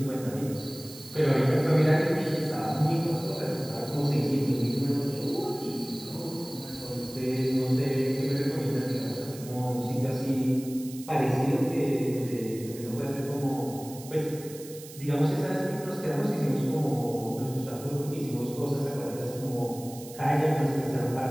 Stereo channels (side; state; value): right; noise; hiss, 16 dB below the sound